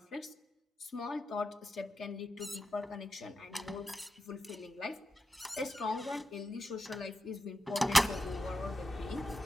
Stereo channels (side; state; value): both; normal; correlation 0.89